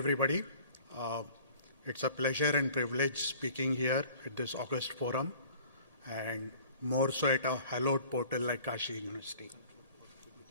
It's a pleasure and privilege speaking here at this August forum, and more so at a hallowed portal like Kashi University.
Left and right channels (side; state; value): both; inverted; correlation -0.49